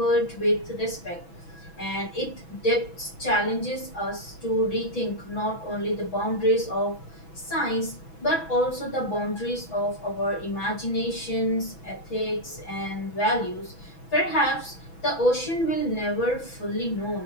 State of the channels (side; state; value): right; late; 6.1 ms